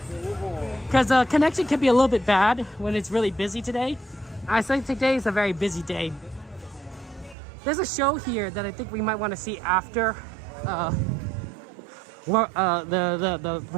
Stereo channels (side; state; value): left; drops out; at 7.4 s